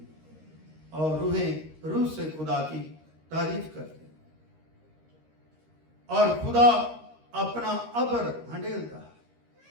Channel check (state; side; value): late; left; 13 ms